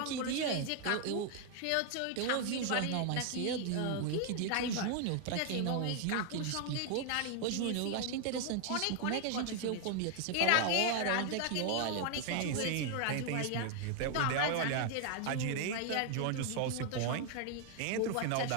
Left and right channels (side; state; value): both; different; correlation 0.00